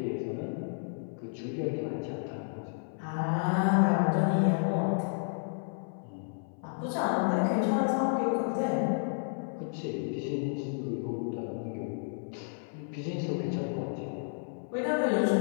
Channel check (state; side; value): silent; right; 57 dB below the other